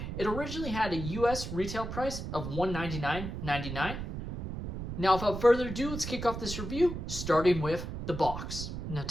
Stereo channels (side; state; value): right; noise; rumble, 6 dB below the sound